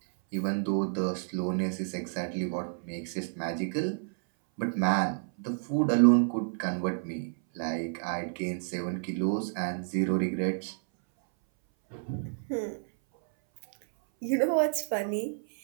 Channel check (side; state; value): left; silent; 58 dB below the other